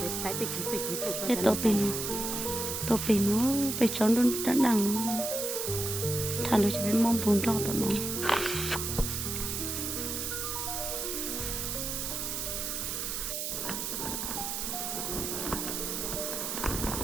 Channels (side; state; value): right; noise; hiss, 3 dB below the sound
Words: để phải tự chỉ cái tổ pin nó bị chọn luôn đã đằng thằng nó chỉ biết mong buồn cho tụi nó